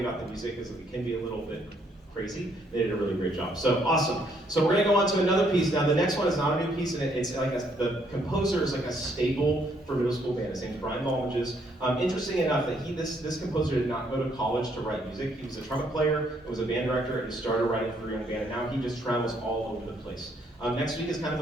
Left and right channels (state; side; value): normal; both; correlation 0.70